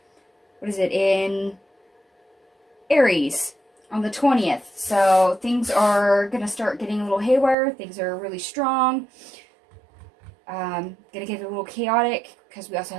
Aries on the 20th. So things are going to start getting a little haywire. Things are really strong. Going to get a little chaotic because we also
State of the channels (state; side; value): drops out; left; at 7.6 s